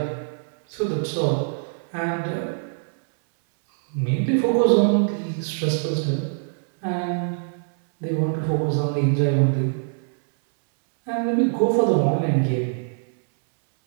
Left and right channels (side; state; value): left; silent; 63 dB below the other